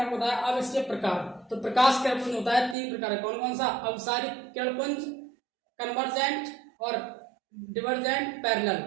आपको बताया। अब इसके प्रकार, तो प्रकाश किरणपुंज होता है 3 प्रकार, कौन कौन सा, अवसारिक किरणपुंज, कन्वर्जेंट और डिवर्जेंट, पैरेलल,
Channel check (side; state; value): left; drops out; at 2.8 s